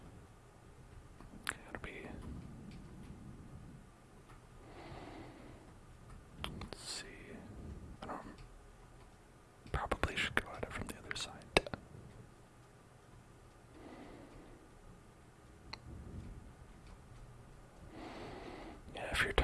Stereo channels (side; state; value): both; identical; correlation 1.00